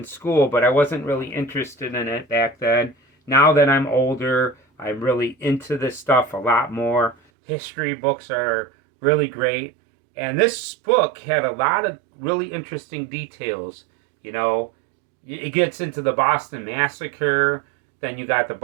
school, but I wasn't really interested in it back then. Now that I'm older, I'm really into this stuff a lot more. History books are really great, and this book had a lot of really interesting details. It gets into the Boston Massacre, then you got the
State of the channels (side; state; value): left; drops out; at 7.2 s